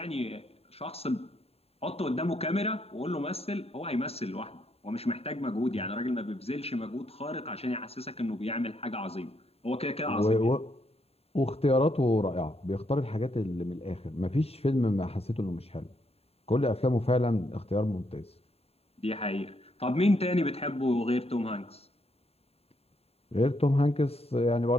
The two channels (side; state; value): right; late; 0.29 ms